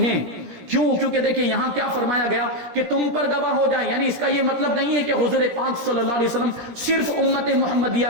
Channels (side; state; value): left; late; 17 ms